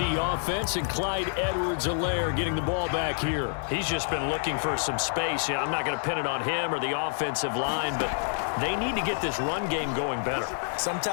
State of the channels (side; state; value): right; silent; digital silence